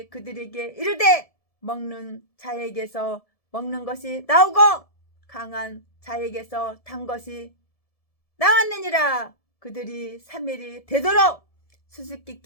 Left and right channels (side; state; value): right; late; 1.7 ms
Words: 그들에게 이르되 먹는 자에게서 먹는 것이 나오고 강한 자에게서 단 것이 나왔느니라. 그들이 3일이 되도록